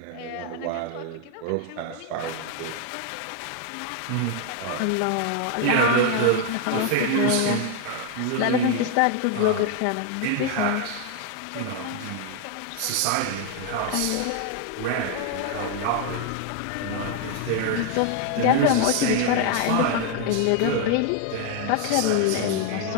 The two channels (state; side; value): different; both; correlation 0.01